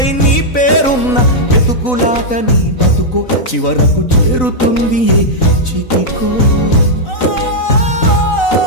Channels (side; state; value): right; late; 3.9 ms